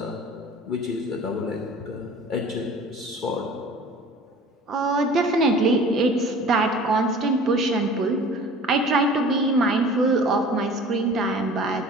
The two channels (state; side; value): normal; both; correlation 0.44